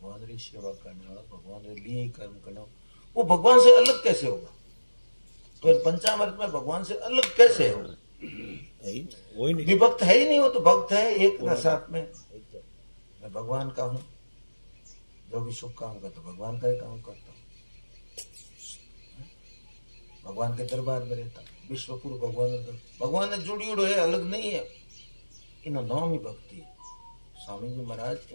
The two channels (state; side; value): inverted; both; correlation -1.00